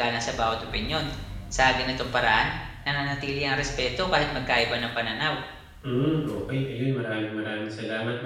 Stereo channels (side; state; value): both; identical; correlation 1.00